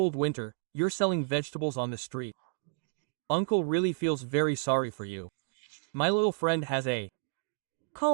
winter, you're selling vegetables on the street. Uncle really feels very sorry for you. My little friend has a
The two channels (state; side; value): silent; left; digital silence